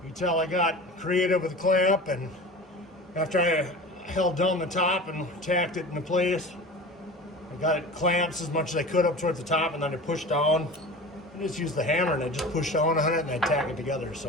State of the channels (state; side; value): normal; both; correlation 0.35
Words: You can tell I got creative with the clamp, and after I held down the top and tacked it into place, I got it clamps as much as I could up towards the top, and then I pushed down. I just used the hammer and I just pushed down on it and I tack it together.